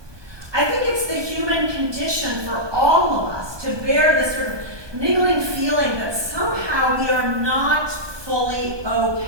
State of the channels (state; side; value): late; left; 1.2 ms